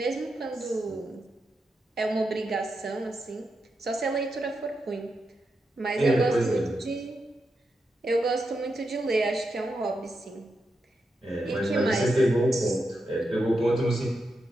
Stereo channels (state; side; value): normal; both; correlation 0.86